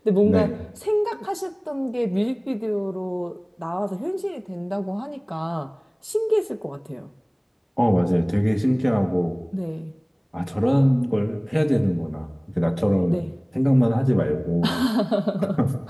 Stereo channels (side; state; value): both; identical; correlation 1.00